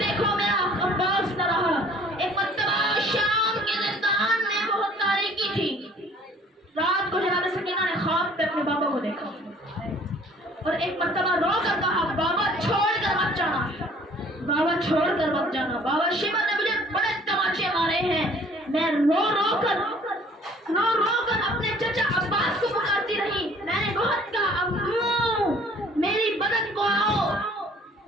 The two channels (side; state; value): both; normal; correlation 0.54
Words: میرا عباس نہ رہا. ایک مرتبہ شام کے زندان میں بہت تاریکی تھی. رات کو جناب سکینہ نے خواب پہ اپنے بابا کو دیکھا اور ایک مرتبہ رو کر کہا بابا چھوڑ کر مت جانا, بابا چھوڑ کر مت جانا. بابا شیبہ نے مجھے بڑے تماچے مارے ہیں. میں رو رو کر اپنے چچا عباس کو پکارتی رہی. میں نے بہت کہا ابو میری بدن کو آؤ,